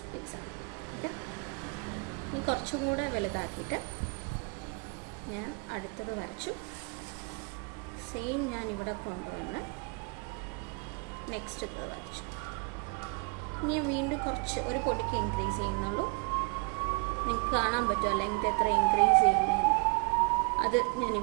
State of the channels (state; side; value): quieter; left; 32.1 dB